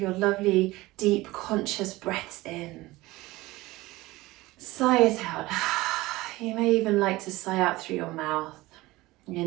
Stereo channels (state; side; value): quieter; left; 19.5 dB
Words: lovely, deep, conscious breaths in. Sigh it out. You may even like to sigh out through your mouth.